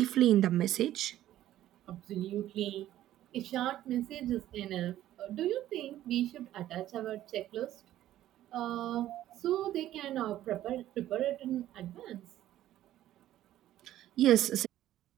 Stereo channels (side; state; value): left; quieter; 13.2 dB